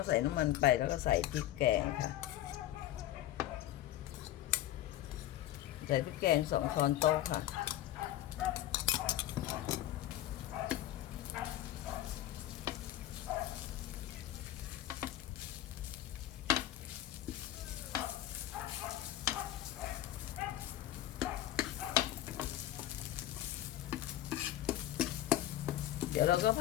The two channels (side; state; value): right; quieter; 13.4 dB